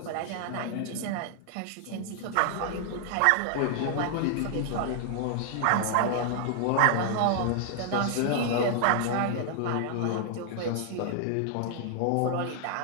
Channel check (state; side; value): different; both; correlation -0.01